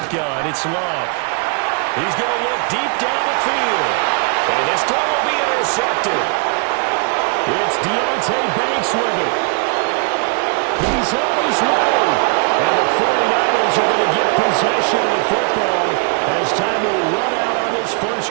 it's Love. He's going to look deep down the field. And this throw will be intercepted. It's Deontay Banks with it. He's on his way. And the 49ers are going to get possession of the football as time will run out on this first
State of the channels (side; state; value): left; quieter; 36.4 dB